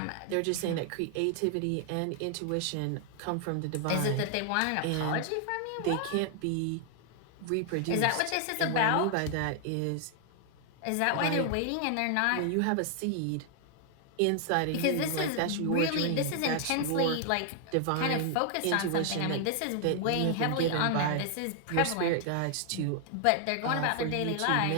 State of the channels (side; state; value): both; different; correlation 0.00